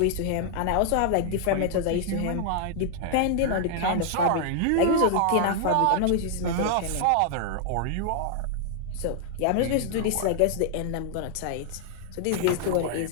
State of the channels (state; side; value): different; both; correlation -0.01